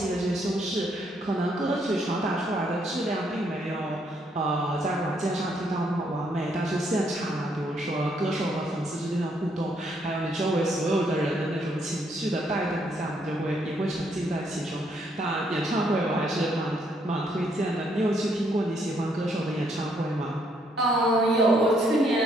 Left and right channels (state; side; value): normal; both; correlation 0.72